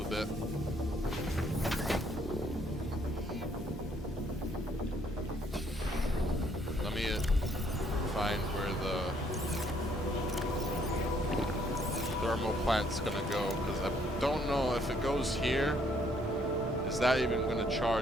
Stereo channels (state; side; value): normal; both; correlation 0.67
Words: a bit. Let me find where the thermal plant's gonna go, because I don't know if it goes here. Is that even gonna